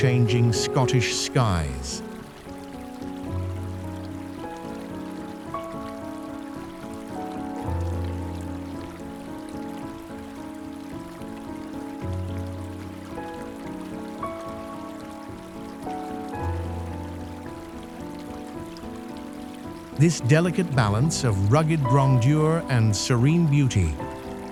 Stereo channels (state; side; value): identical; both; correlation 1.00